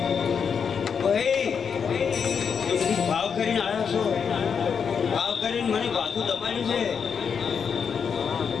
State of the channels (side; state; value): right; quieter; 6.6 dB